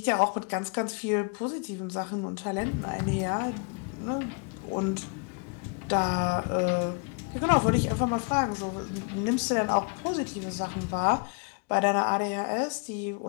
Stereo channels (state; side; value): quieter; right; 35.2 dB